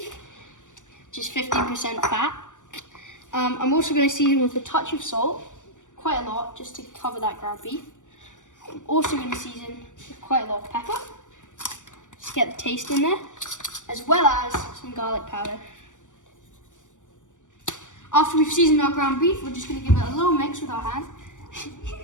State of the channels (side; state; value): right; late; 0.86 ms